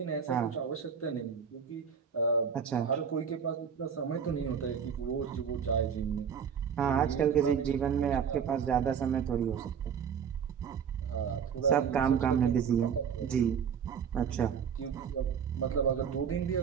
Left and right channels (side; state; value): left; quieter; 7.2 dB